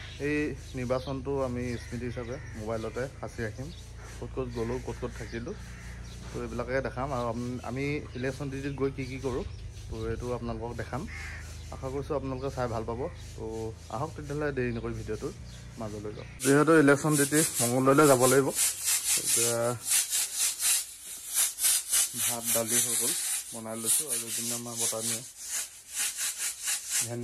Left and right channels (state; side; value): identical; both; correlation 1.00